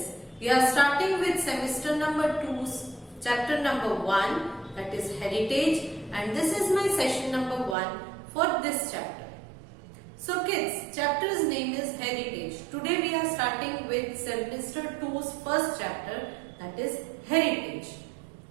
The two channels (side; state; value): left; drops out; at 7.8 s